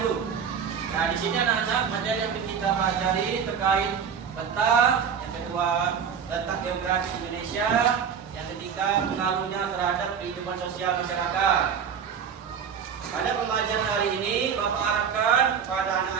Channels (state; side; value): quieter; left; 7.3 dB